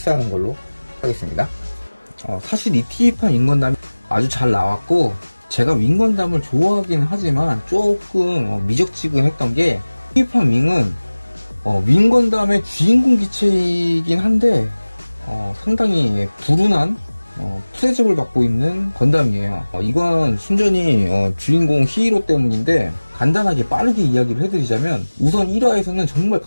걸로 하겠습니다. 사실 이 TV판 윙건담이 아주 잘 나왔고, 제가 윙건담을 좋아하긴 하지만 조금 미적지근했던 게, TV판 윙은 윙건담의 주인공 기체이긴 한데 상당히 불운한 프레접을 받고 있는 건담이에요. 이건 순전히 주인공 히어로 때문인데, 간단하게 빠르게 이야기를 해드리자면, 우선 1화에서는 정말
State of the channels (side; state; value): both; inverted; correlation -1.00